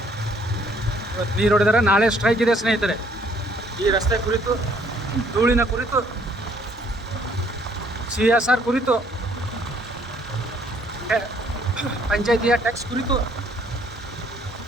ಇವತ್ತು ನೀರು ಹೊಡೆದಾರೆ, ನಾಳೆ ಸ್ಟ್ರೈಕ್ ಇದೆ ಸ್ನೇಹಿತರೆ. ಈ ರಸ್ತೆ ಕುರಿತು, ಧೂಳಿನ ಕುರಿತು, CSR ಕುರಿತು, ಪಂಚಾಯತಿಯ ಟ್ಯಾಕ್ಸ್ ಕುರಿತು.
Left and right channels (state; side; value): normal; both; correlation 0.64